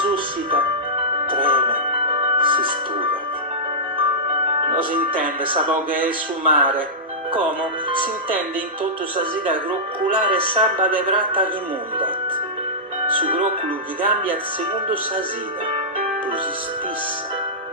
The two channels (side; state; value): both; normal; correlation -0.14